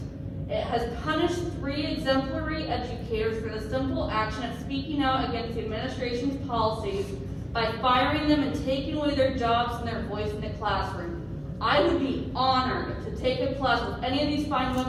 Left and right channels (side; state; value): both; identical; correlation 1.00